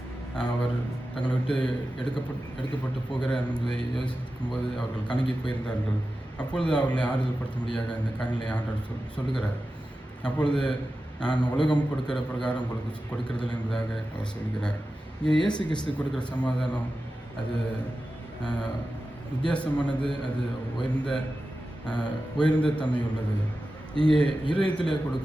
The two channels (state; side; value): normal; both; correlation 0.93